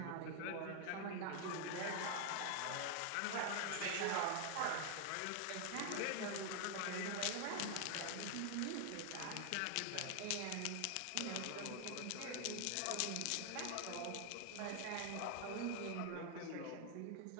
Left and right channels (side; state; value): both; different; correlation 0.00